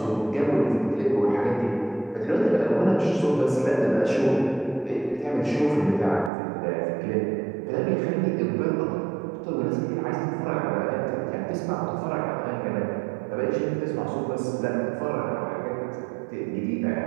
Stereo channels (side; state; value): left; drops out; at 6.3 s